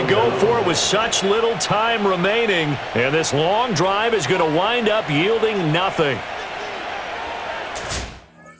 go for it with such little time remaining. And this long drive is going to wind up yielding nothing.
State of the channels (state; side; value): identical; both; correlation 1.00